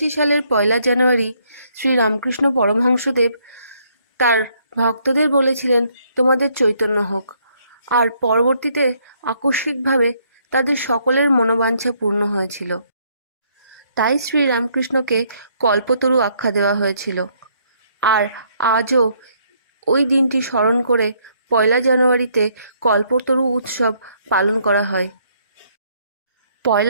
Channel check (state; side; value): inverted; both; correlation -0.69